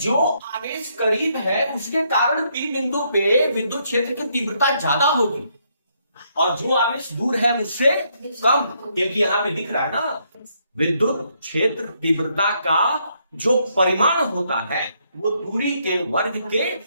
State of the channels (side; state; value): both; inverted; correlation -0.73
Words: आवेश करीब है उसके कारण P बिंदु पे विद्युत क्षेत्र की तीव्रता ज्यादा होगी, और जो आवेश दूर है उससे कम, क्योंकि यहाँ पे दिख रहा है ना, विद्युत क्षेत्र तीव्रता का जो परिमाण होता है वो दूरी के वर्ग के